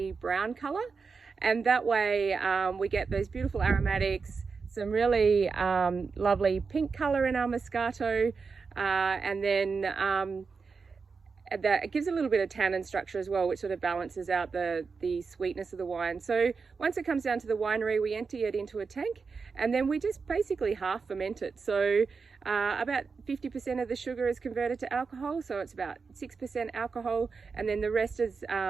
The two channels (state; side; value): quieter; left; 5.0 dB